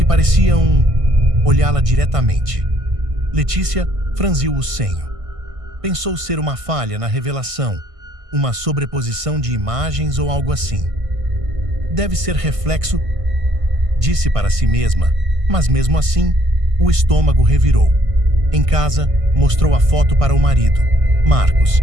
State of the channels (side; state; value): left; late; 1.5 ms